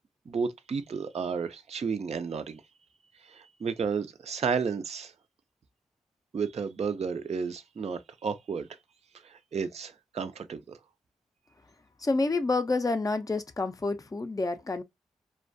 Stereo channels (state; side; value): normal; both; correlation 0.74